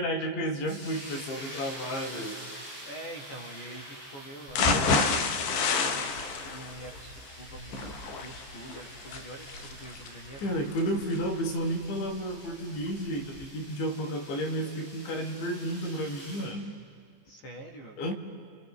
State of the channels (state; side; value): late; right; 15 ms